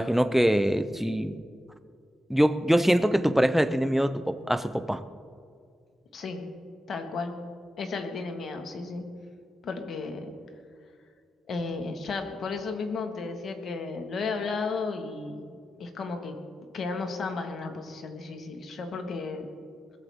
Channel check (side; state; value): both; normal; correlation 0.92